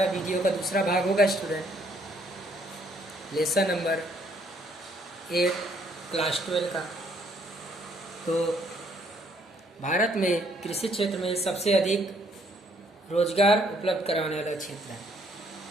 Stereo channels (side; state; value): both; normal; correlation 0.67